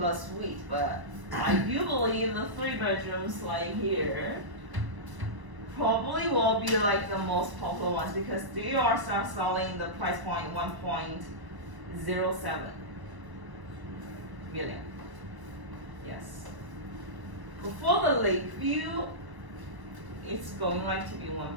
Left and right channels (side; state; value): left; late; 1.0 ms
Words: suite, but I do believe the 3 bedrooms like here probably will be like the most popular ones because they are start selling the price point 1.07 million. Yes. For the Lakeview, it's going like to be